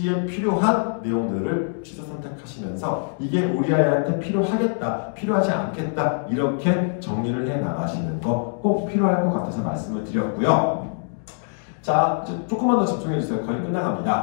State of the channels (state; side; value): silent; right; digital silence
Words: 필요한 내용들을 취사 선택하시면서 이게 우리 아이한테 필요하겠다, 필요하지 않겠다, 이렇게 정리를 해 나가시는 거 꼭 필요할 것 같아서 말씀을 드렸고요. 자, 이제 조금만 더 집중해 주세요. 거의